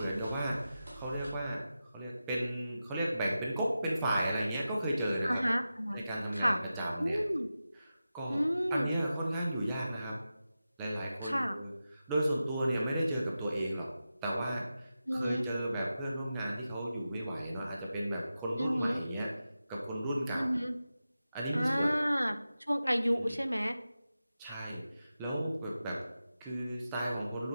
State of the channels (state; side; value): inverted; both; correlation -0.92